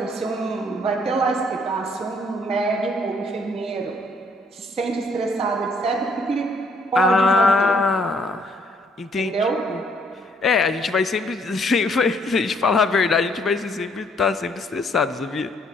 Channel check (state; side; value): normal; both; correlation 0.66